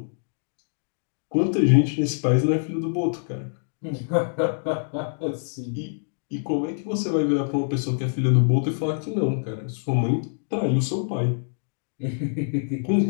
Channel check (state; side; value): silent; right; digital silence